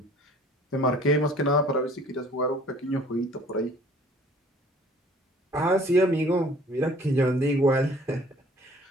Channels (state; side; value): normal; both; correlation 0.53